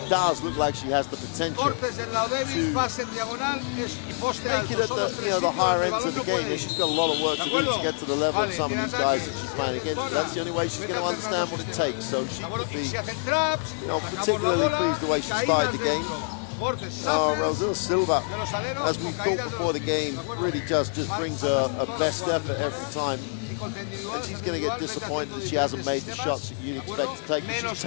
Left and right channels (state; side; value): silent; right; 60 dB below the other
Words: does look like she has the potential to make it at the higher ends of the game. And she's got a lot of work to do to get to the level of some of these guys that she's playing against. But that's the only way she's going to understand what it takes. So she would be, you know, particularly pleased the way she started the game. Rosel Silva, as we thought before the game, really just brings a best effort every time. And she's going to get disappointed that she hasn't made the shots that you'd expect to take. She's